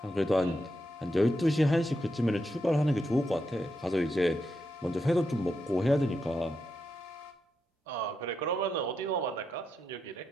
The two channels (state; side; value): normal; both; correlation 0.84